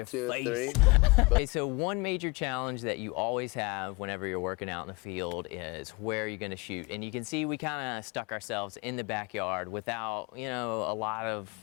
2, face. 3. Okay, so one major challenge that you always have whenever you're working out in the field is where you're gonna shoot. And you can see we kind of stuck ourselves in the backyard without, a lot of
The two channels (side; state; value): right; quieter; 25.9 dB